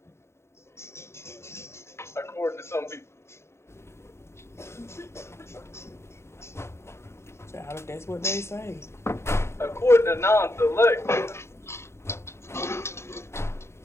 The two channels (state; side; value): late; right; 0.13 ms